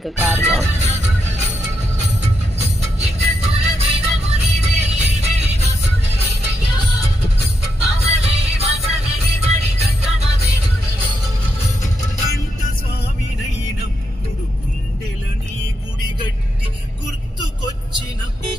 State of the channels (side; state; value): both; normal; correlation 0.82